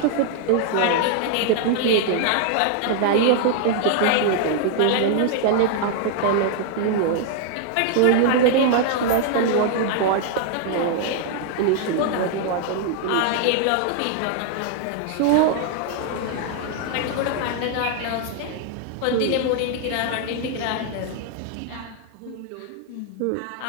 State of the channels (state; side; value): different; both; correlation 0.00